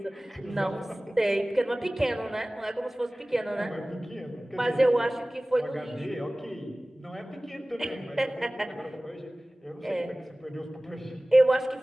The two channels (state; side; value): normal; both; correlation 0.98